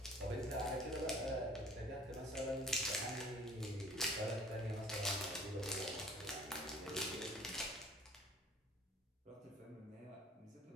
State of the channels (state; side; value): normal; both; correlation 0.51